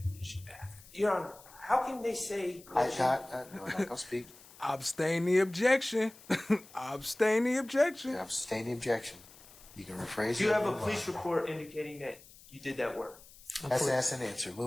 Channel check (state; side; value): noise; left; hiss, 22 dB below the sound